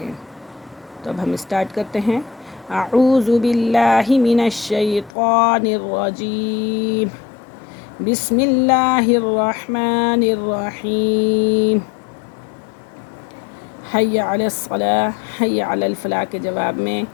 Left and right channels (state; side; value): drops out; right; at 5.1 s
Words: تو اب ہم اسٹارٹ کرتے ہیں۔ اعوذ باللہ من الشیطان الرجیم، بسم اللہ الرحمن الرحیم۔ حی علی الصلاۃ، حی علی الفلاح کے جواب میں